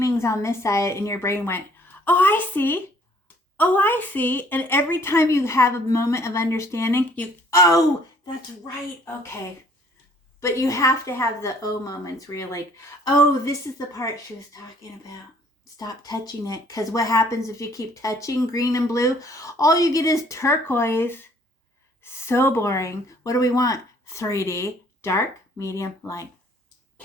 on this side and your brain went, oh, I see. Oh, I see. And every time you have a moment of understanding, oh, that's right. Okay. But you have to have the oh moments where you're like, oh, this is the part she was talking about. Stop touching it. Because what happens if you keep touching green and blue? All you get is turquoise. So boring. What do we want? 3D. Dark, medium, light.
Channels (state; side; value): normal; both; correlation 0.59